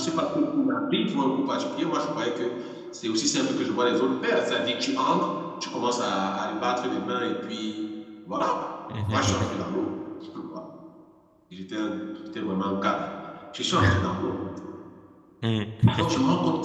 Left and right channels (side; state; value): both; identical; correlation 1.00